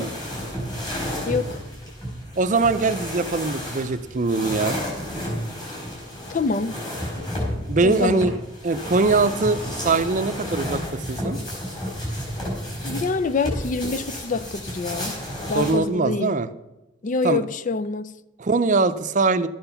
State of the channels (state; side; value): normal; both; correlation 0.23